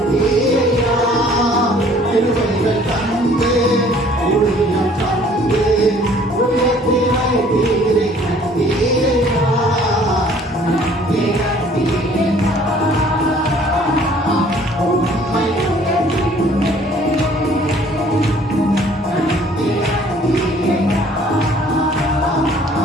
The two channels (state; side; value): normal; both; correlation 0.56